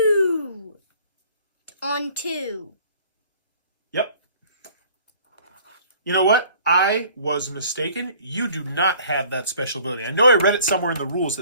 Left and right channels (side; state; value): both; inverted; correlation -0.53